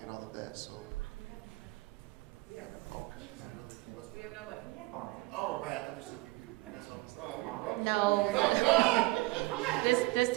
and all of that. So. Oh, right. No. This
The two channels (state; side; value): quieter; left; 22.2 dB